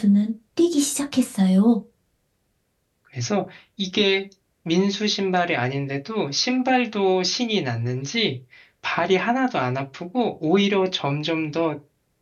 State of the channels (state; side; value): identical; both; correlation 1.00